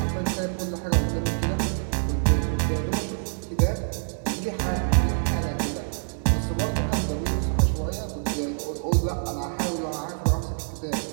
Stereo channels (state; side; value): silent; left; 61 dB below the other